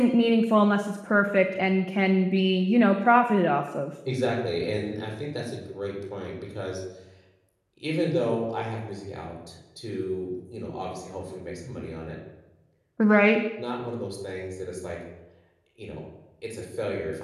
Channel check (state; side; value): identical; both; correlation 1.00